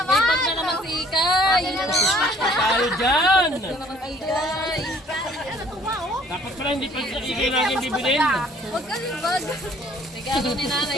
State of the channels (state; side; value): normal; both; correlation 0.58